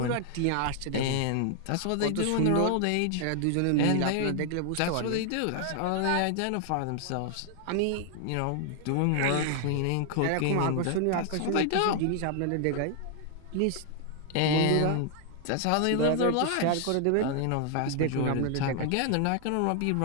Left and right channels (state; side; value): different; both; correlation 0.00